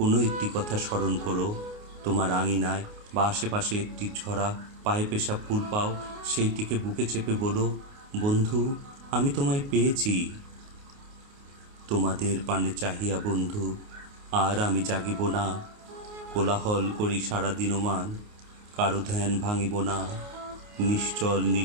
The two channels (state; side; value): late; left; 29 ms